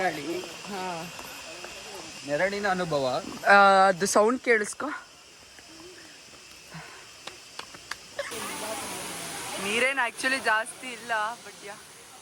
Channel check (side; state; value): both; identical; correlation 1.00